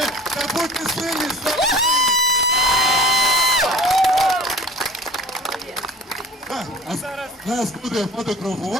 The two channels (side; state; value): both; normal; correlation 0.43